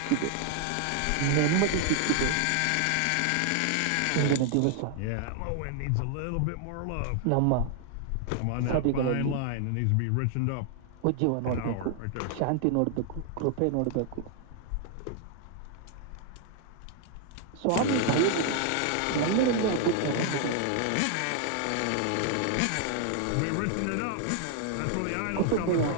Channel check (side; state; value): both; different; correlation 0.00